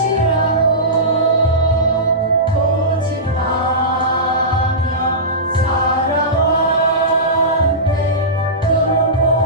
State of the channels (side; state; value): both; normal; correlation -0.18